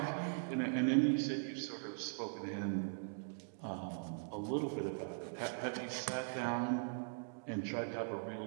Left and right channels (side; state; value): left; silent; digital silence